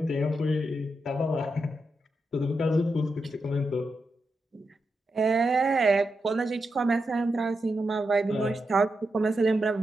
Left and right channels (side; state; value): both; normal; correlation 0.86